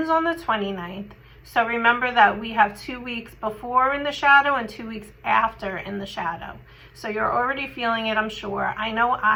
on the 29th. So remember that we have 2 weeks before in the shadow and 2 weeks after in the shadow. So you're already feeling it, I'm sure. I know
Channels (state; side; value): identical; both; correlation 1.00